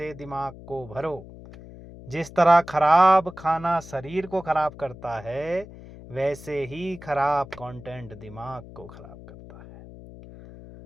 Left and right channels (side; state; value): left; noise; hum, 17 dB below the sound